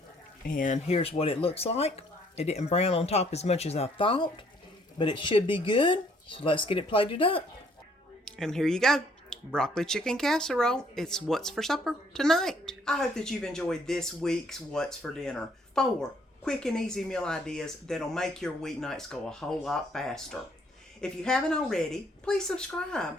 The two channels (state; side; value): normal; both; correlation 0.64